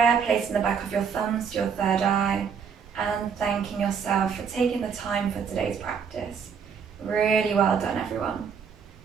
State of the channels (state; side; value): quieter; left; 6.6 dB